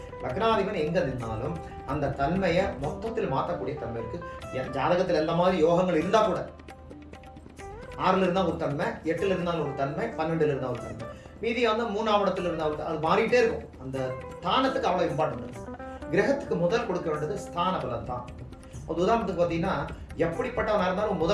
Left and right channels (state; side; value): identical; both; correlation 1.00